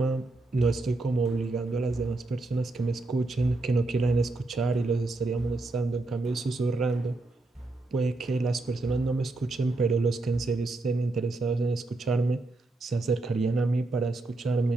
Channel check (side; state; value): left; quieter; 3.1 dB